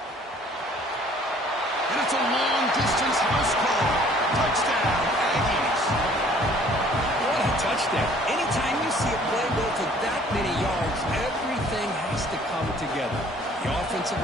And it's a long-distance house call. Touchdown, Aggies. What a touchdown. Anytime you see a play go for that many yards, everything has to come together. The offensive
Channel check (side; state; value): both; normal; correlation 0.56